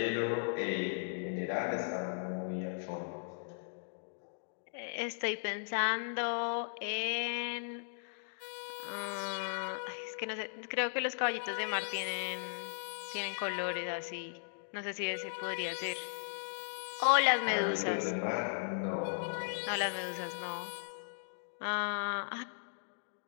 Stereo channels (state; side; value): silent; right; digital silence